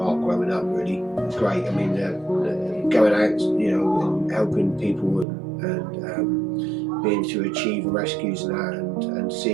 growing up. Really, it was great. I mean, going out, you know, and helping people and being to achieve rescues and that, and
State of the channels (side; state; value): left; drops out; at 5.2 s